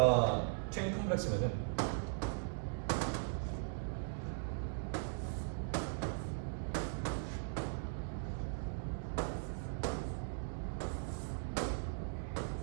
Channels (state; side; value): silent; left; digital silence